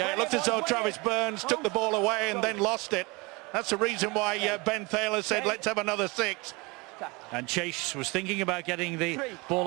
it looked as though Travis Burns took the ball away and then lost it. That's the reason why Ben Thaler said, let's have another 6. And Chase was thinking about getting the ball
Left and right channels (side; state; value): left; quieter; 26.2 dB